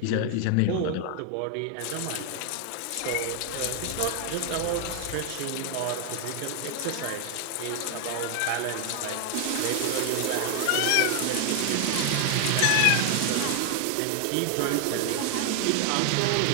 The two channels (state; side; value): different; both; correlation 0.00